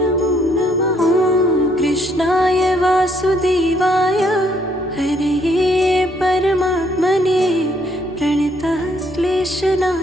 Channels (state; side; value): normal; both; correlation 0.69